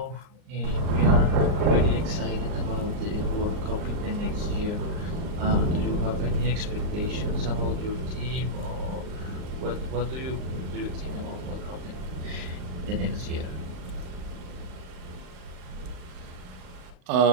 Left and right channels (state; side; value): late; left; 39 ms